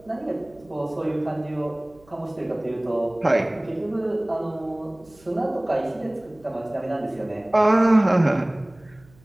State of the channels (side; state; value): right; noise; hum, 28 dB below the sound